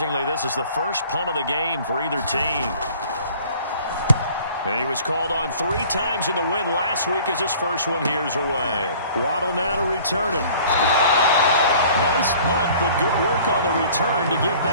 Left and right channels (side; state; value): both; inverted; correlation -0.50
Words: this is the first punt of the game for either team. And he was called on 3 times in the win last week as his first one here's away. Waddle now to return it. Nice punt, but good work on the return to get